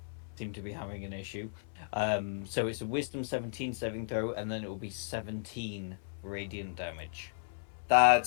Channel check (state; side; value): silent; right; 55 dB below the other